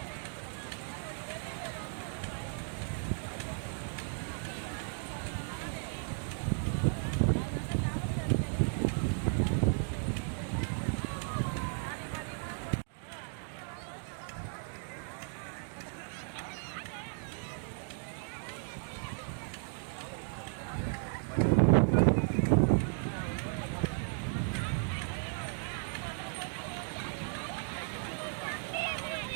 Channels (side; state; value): left; silent; 54 dB below the other